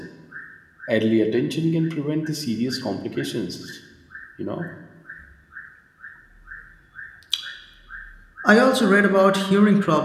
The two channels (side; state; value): both; identical; correlation 1.00